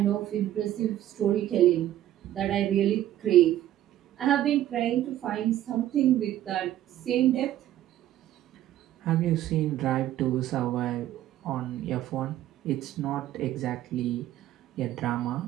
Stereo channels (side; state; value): left; quieter; 12.9 dB